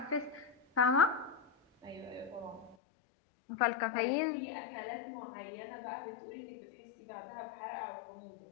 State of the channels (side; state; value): right; drops out; at 2.8 s